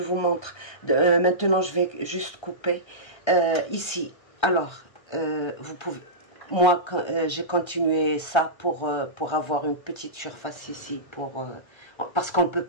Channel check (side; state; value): right; late; 1.3 ms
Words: montre. Maintenant, je vais juste couper ici. Alors, vous pouvez... Moi, j'ai continué ça pour avoir une petite surface ici, parce qu'on ne peut